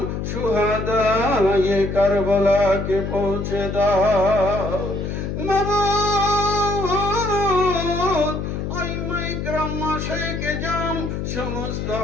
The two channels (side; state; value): left; noise; hum, 4 dB below the sound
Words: শুহাদায়ে কারবালাকে পৌঁছে দাও। মাবুদ, আইমায়ে কেরাম, মাশায়েখে জাম, সমস্ত